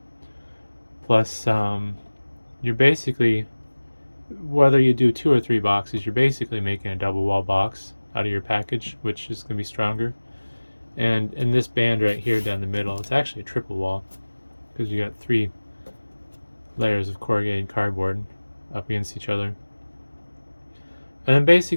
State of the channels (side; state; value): both; inverted; correlation -1.00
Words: Plus, you're basically, whether you do 2 or 3 boxes, you're basically making a double wall box out of your package, which is going to be stronger. And in this band right here down the middle, it's actually a triple wall, because you got 3 layers of corrugated cardboard up against each other. And then